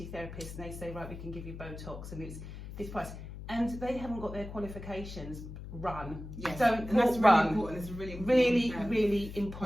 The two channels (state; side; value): noise; left; hum, 11 dB below the sound